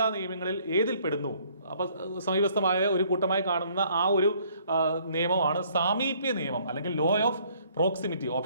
നിയമങ്ങളിൽ ഏതിൽ പെടുന്നു? അപ്പൊ സമീപസ്ഥമായ ഒരു കൂട്ടമായി കാണുന്ന ആ ഒരു നിയമമാണ് സാമീപ്യ നിയമം അല്ലെങ്കിൽ law of proximity.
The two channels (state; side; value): inverted; both; correlation -0.62